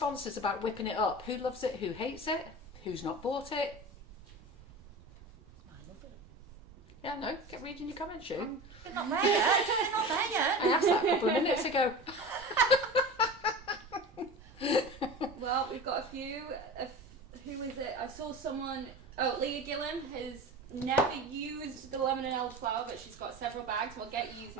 about whipping it up? Who loves it? Who hates it? Who's not bought it? I love it. Yeah, no, get reading your comments, Sue. They're not there yet. They're not there yet. I asked that a couple of minutes ago. Well, we've got a few. Who is it? I saw someone. Oh, Leah Gillen has never used the lemon and elderflower, but she's got several bags. We'll get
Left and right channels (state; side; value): normal; both; correlation 0.32